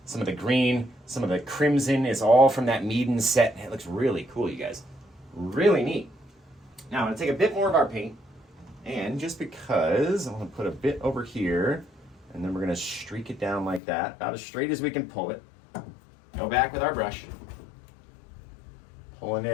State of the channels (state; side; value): drops out; right; at 13.8 s